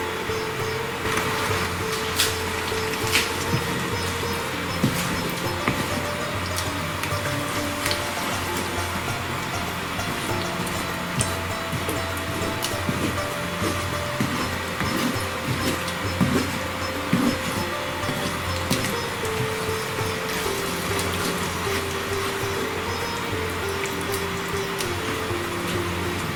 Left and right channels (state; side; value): identical; both; correlation 1.00